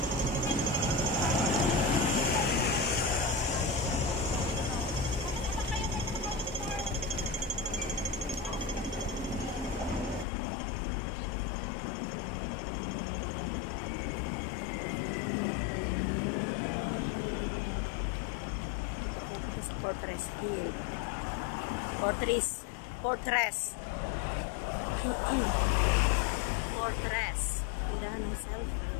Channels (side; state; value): right; drops out; at 10.2 s